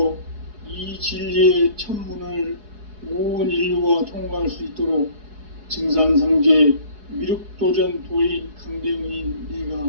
이 진리의 첫 문을 온 인류가 통과할 수 있도록 증산상제 미륵도전 도인 강대웅인 내가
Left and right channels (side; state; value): left; late; 4.7 ms